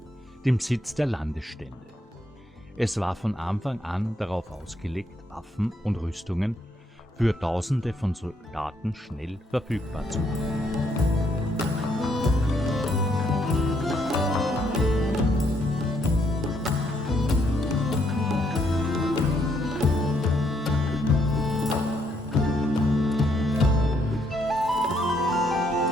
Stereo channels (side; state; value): both; normal; correlation 0.73